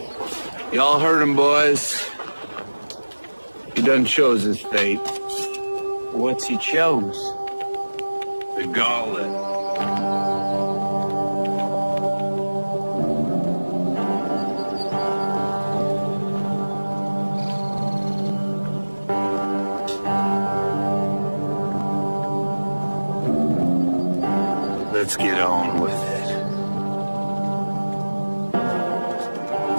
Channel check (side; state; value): both; inverted; correlation -1.00